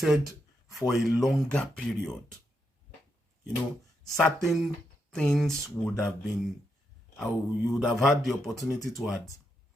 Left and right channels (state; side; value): normal; both; correlation 0.82